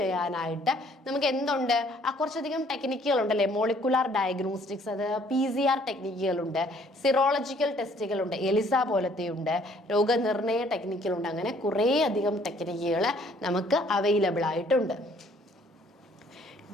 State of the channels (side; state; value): both; normal; correlation 0.61